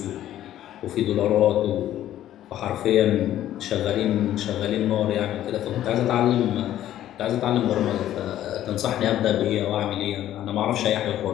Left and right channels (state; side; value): quieter; right; 12.5 dB